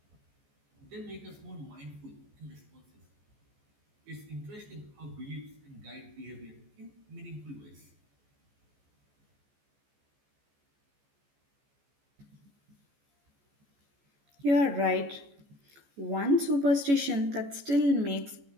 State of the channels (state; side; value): late; left; 14 ms